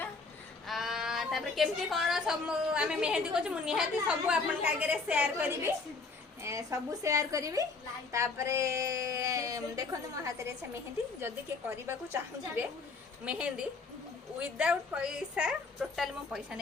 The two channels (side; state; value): right; quieter; 4.2 dB